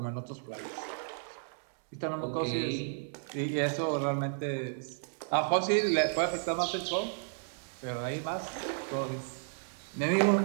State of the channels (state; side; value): silent; left; digital silence